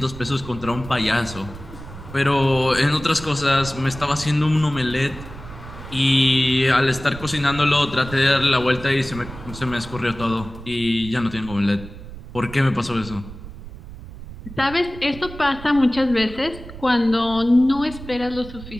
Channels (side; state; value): right; noise; rumble, 14 dB below the sound